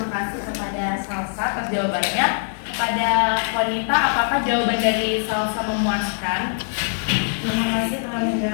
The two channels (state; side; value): silent; right; digital silence